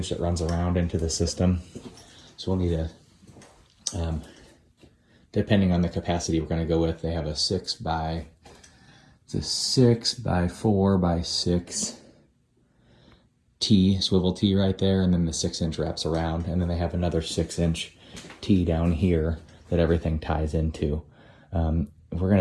that runs around into the system. So we'll need a, depending on the capacity we're going to go with, they have a 6 by 4 by 6 T, swivel T right there, and then the 6-inch wraps around, and then they have another 6-inch T down here that everything ties into. We're going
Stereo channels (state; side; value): identical; both; correlation 1.00